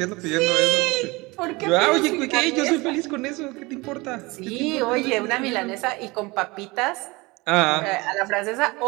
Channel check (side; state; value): left; quieter; 23.8 dB